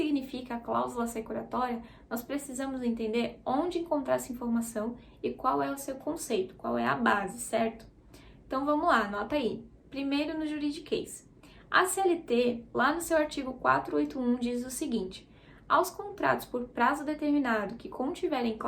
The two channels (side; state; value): both; identical; correlation 1.00